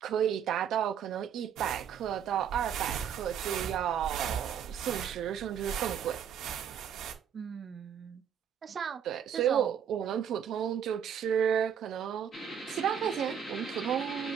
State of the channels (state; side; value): quieter; left; 8.4 dB